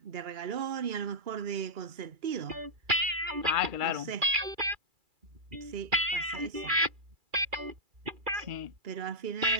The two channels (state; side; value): late; left; 2.3 ms